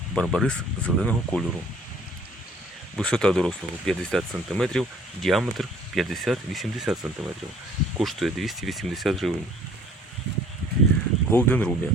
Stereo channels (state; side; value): normal; both; correlation 0.55